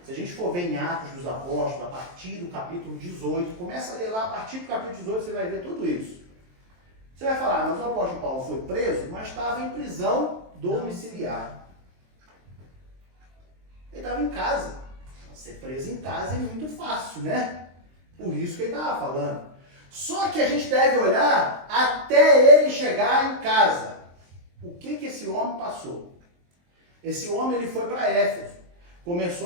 se a gente for ver em Atos dos Apóstolos, a partir do capítulo 18, começa a ler lá, a partir do capítulo 18 você vai ver tudo isso. Você vai falar, mas o apóstolo Paulo foi preso, mas estava em prisão domiciliar. Ele estava em casa. Ser preso em casa é muito fácil, né? Por isso que ele estava falando. Só que a gente deve olhar até ele chegar em casa. O que esse homem passou? Esse homem ele foi para Éfeso.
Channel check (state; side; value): late; left; 23 ms